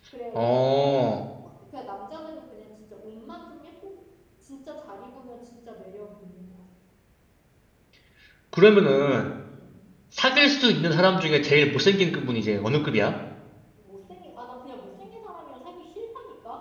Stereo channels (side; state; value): both; identical; correlation 1.00